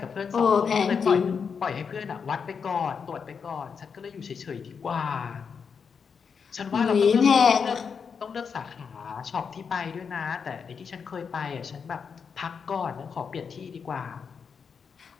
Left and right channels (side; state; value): right; quieter; 6.2 dB